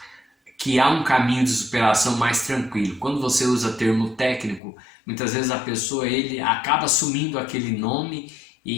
que há um caminho de superação mais tranquilo. Quando você usa termo técnico, muitas vezes a pessoa ele acaba assumindo aquele nome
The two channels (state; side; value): drops out; right; at 4.6 s